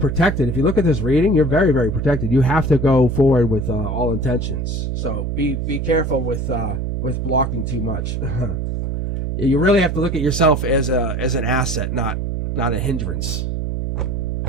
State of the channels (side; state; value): right; noise; hum, 2 dB below the sound